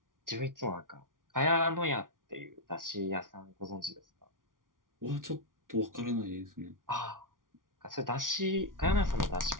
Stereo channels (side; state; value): left; late; 0.89 ms